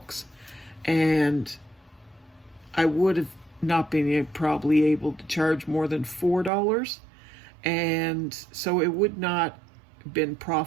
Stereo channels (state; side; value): drops out; left; at 6.5 s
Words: and I would have not been probably able to charge more than $4, and so it would not have been